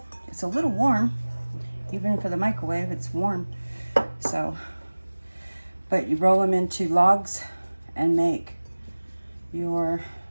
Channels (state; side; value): inverted; both; correlation -1.00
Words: It's a little warm. Even for the microwave, it's warm. So, but you roll them into logs and make your